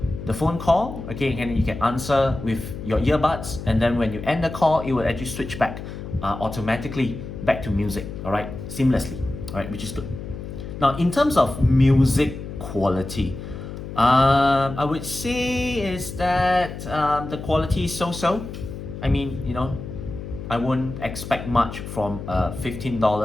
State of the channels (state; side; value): noise; left; hum, 9 dB below the sound